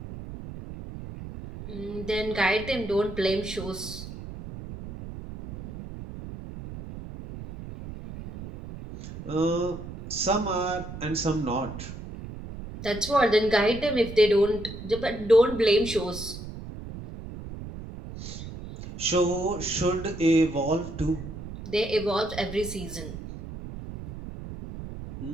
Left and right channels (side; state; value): right; noise; rumble, 11 dB below the sound